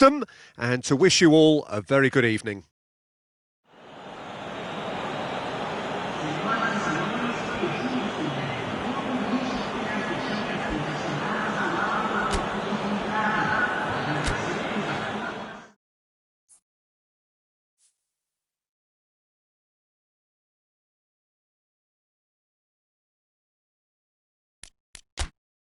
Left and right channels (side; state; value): both; identical; correlation 1.00